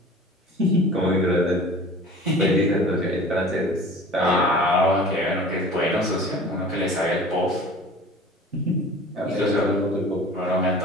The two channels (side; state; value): both; normal; correlation 0.42